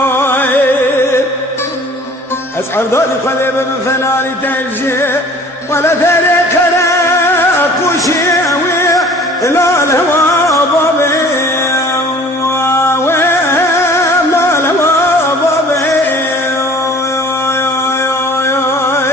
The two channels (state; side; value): normal; both; correlation 0.49